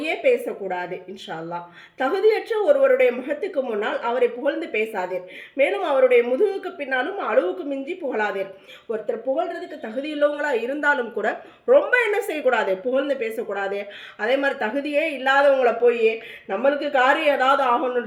பேசக்கூடாது இன்ஷா அல்லாஹ். தகுதியற்ற ஒருவருடைய முகத்துக்கு முன்னால் அவரை புகழ்ந்து பேசாதீர். மேலும் அவருடைய முதுகுக்கு பின்னாலும் அளவுக்கு மிஞ்சி புகழாதீர். ஒருத்தர் புகழ்றதுக்கு தகுதி உள்ளவங்களா இருந்தாலும் கூட ரொம்ப என்ன செய்யக்கூடாது, புகழ்ந்து பேசக்கூடாது. அதே மாதிரி தகுதியே இல்லாதவங்களை போய் நம்மளுக்கு காரியம் ஏதாவது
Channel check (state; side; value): identical; both; correlation 1.00